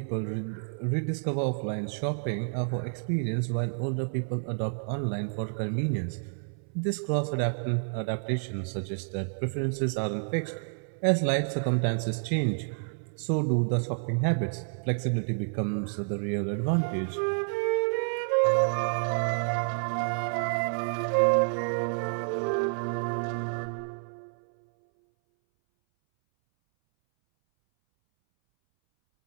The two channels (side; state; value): left; silent; 58 dB below the other